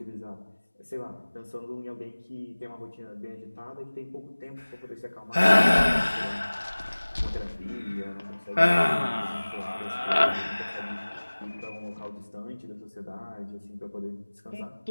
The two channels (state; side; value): inverted; both; correlation -1.00